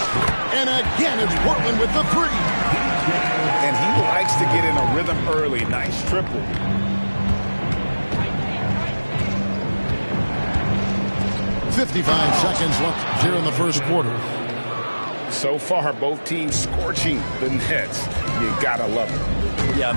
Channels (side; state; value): both; inverted; correlation -1.00